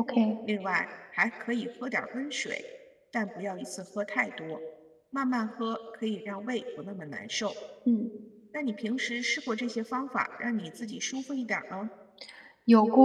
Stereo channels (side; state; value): both; identical; correlation 1.00